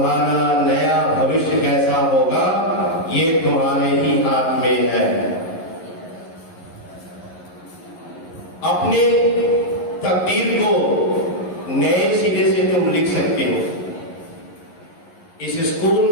नया भविष्य कैसा होगा ये तुम्हारे ही हाथ में है। अपने तकदीर को नए सिरे से तुम लिख सकते हो। इस स्कूल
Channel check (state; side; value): late; right; 11 ms